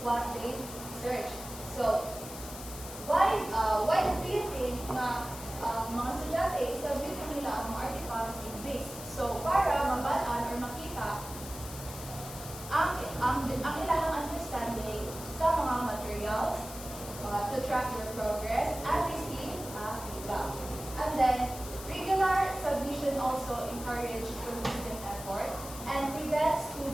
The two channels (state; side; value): noise; left; hiss, 12 dB below the sound